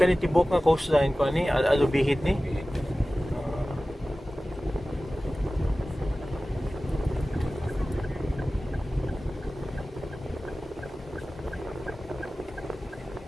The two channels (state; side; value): normal; both; correlation 0.96